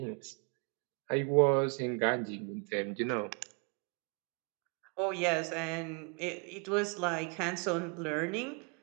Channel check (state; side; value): quieter; left; 35.0 dB